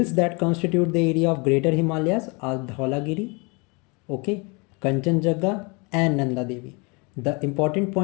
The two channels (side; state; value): right; quieter; 30.1 dB